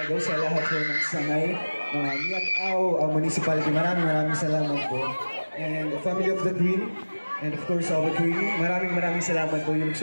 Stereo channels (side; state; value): both; inverted; correlation -1.00